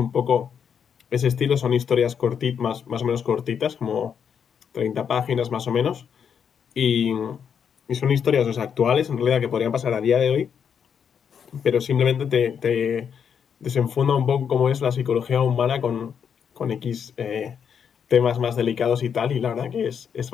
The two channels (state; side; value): quieter; right; 7.5 dB